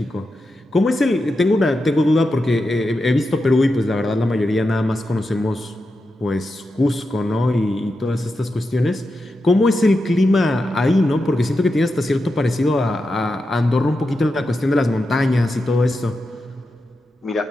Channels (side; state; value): both; normal; correlation 0.89